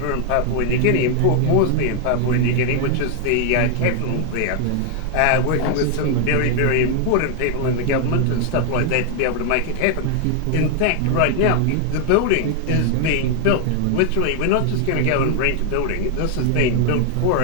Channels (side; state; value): both; different; correlation 0.00